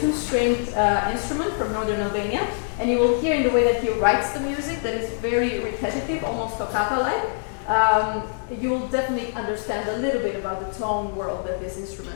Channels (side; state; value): right; silent; digital silence